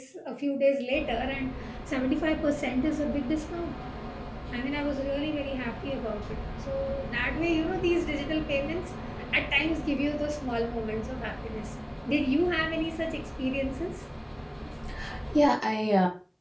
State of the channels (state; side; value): identical; both; correlation 1.00